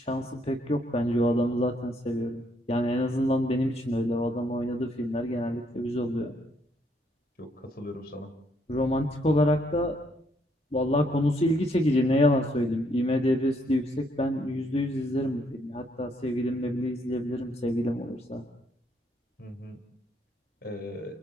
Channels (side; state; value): both; normal; correlation 0.71